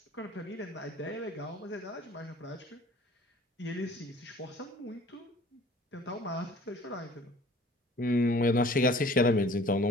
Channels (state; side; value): normal; both; correlation 0.51